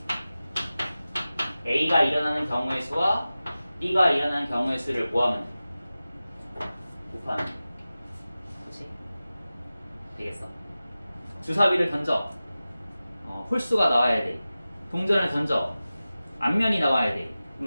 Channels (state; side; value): inverted; both; correlation -0.96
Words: A가 일어나는 경우의 수와 B가 일어나는 경우의 수를 뭐하면 돼? 곱하면 돼. 그렇지? 되겠어? 주사위를 던져. 홀수가 나와야 돼. 동전을 던져. 앞면이 나와야 돼.